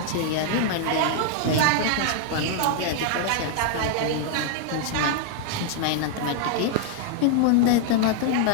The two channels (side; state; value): both; different; correlation 0.00